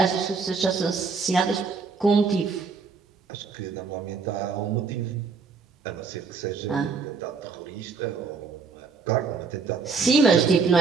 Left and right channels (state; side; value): quieter; left; 5.0 dB